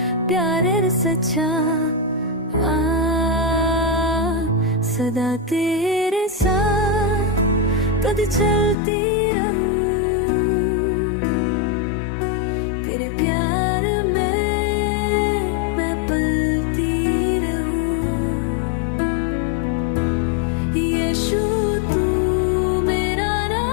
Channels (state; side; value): drops out; right; at 8.8 s